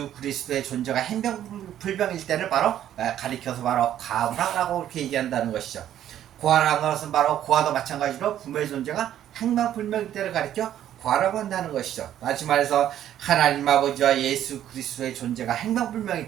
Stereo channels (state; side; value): quieter; left; 11.3 dB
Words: 그리스도의 존재가 행병불명일 때를 바로 가리켜서 바로 과부라고 그렇게 얘기한다는 것이죠. 고아라는 것은 바로 고아도 마찬가지로 부모의 존재가 행방불명일 때를 가리켜 고아라고 한다는 것이죠. 다시 말해서 하나님 아버지와 예수 그리스도의 존재가